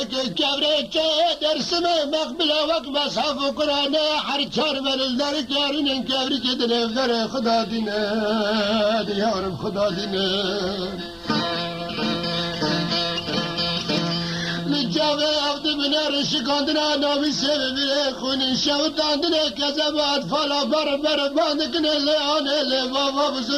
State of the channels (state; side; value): identical; both; correlation 1.00